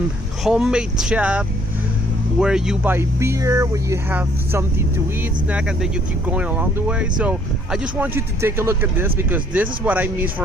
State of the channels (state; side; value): normal; both; correlation 0.63